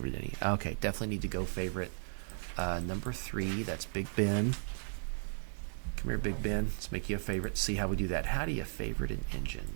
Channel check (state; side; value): silent; left; 54 dB below the other